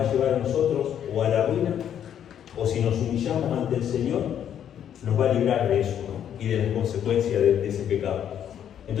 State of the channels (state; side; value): quieter; right; 9.5 dB